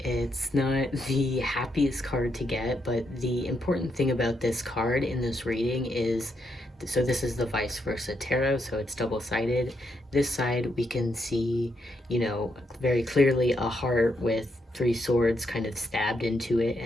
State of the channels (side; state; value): both; normal; correlation 0.79